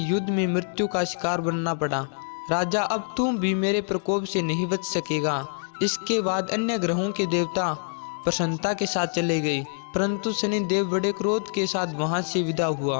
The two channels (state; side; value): silent; right; 61 dB below the other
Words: युद्ध में मृत्यु का शिकार बनना पड़ा। राजा, अब तुम भी मेरे प्रकोप से नहीं बच सकेगा। इसके बाद अन्य ग्रहों के देवता प्रसन्नता के साथ चले गए, परंतु शनिदेव बड़े क्रोध के साथ वहां से विदा